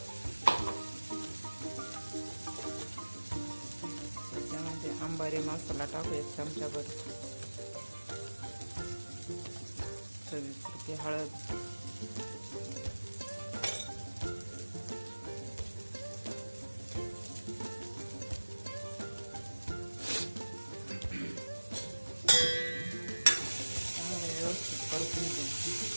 त्याच्यामध्ये अंबारी मसाला टाकू 1 चमचाभर. चवीपुरती हळद, चांगलं व्यवस्थित परतून घेऊ.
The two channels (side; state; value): both; inverted; correlation -1.00